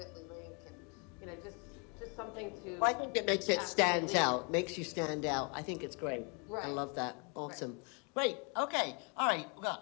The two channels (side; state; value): right; quieter; 35.3 dB